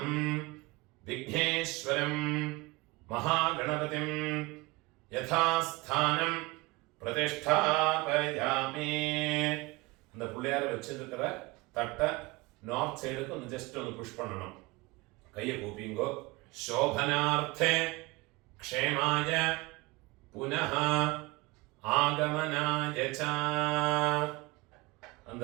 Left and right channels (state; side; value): quieter; left; 23.7 dB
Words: विघ्नेश्वरं महागणपतिं यथास्थानं प्रतिष्ठापयामि. அந்த புள்ளையார வச்சிருக்கிற தட்டை நார்த் சைடுக்கு ഒന്ന് ஜஸ்ட் ഒന്ന് புஷ் பண்ணணும். கையை கூப்பிங்கோ. சோபனார்த்தே க்ஷேமாய புனः ஆகமனாய ச.